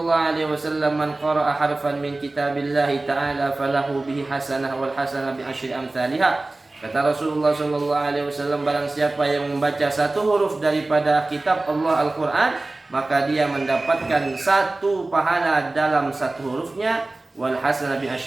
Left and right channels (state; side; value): quieter; left; 3.0 dB